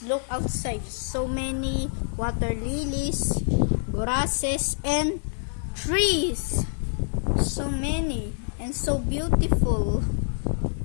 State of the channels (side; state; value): right; silent; digital silence